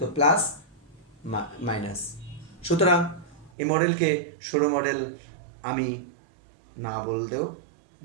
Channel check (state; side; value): drops out; left; at 3.5 s